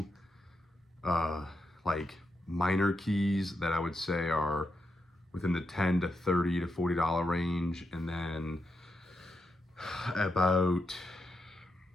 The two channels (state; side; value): normal; both; correlation 0.85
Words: like minor keys that I would say are within the $10 to $30 to $40 range, and then about